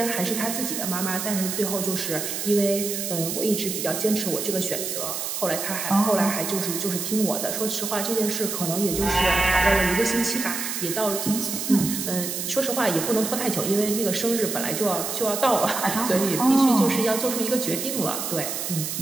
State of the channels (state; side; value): noise; right; hiss, 4 dB below the sound